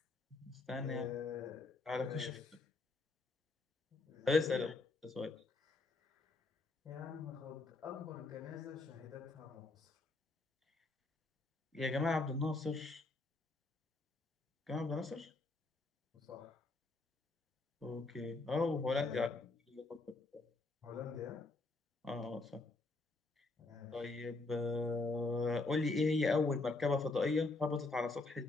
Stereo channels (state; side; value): quieter; right; 3.4 dB